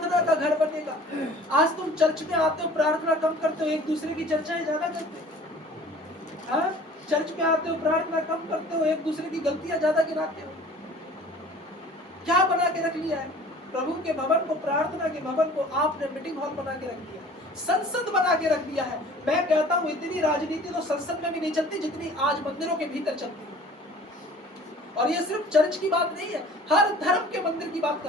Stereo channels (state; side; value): normal; both; correlation 0.47